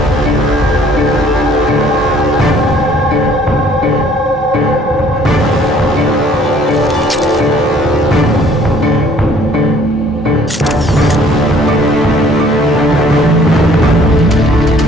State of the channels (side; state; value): both; normal; correlation 0.57